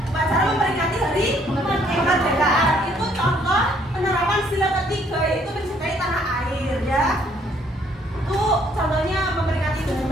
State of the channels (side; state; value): both; normal; correlation 0.65